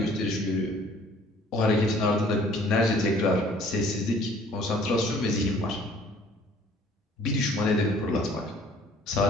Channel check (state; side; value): normal; both; correlation 0.55